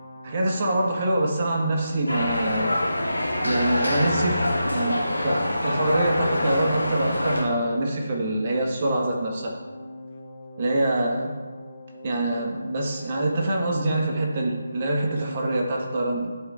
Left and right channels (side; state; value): both; inverted; correlation -0.85